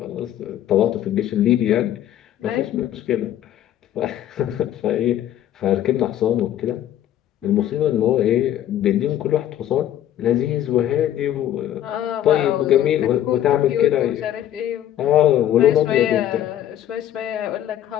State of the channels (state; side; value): quieter; right; 11.7 dB